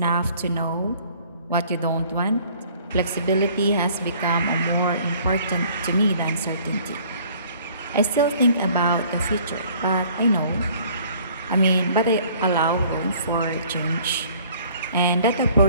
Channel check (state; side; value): inverted; both; correlation -0.55